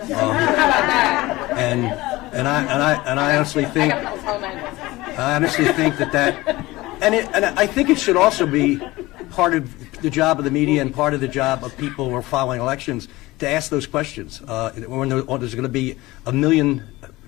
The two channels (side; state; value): right; quieter; 19.6 dB